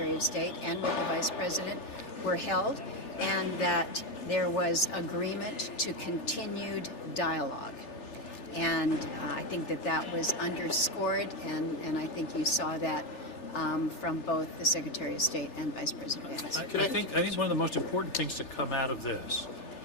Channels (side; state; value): right; late; 3.4 ms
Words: of State and with the Vice President were held, and that there was agreement to continued dialogue. And I think that was underscored, and I think you saw that from both the Secretary of State and Vice President Vance. I think one of the most important things to come out of this